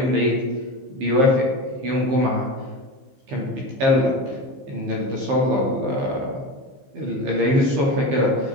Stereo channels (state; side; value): late; left; 15 ms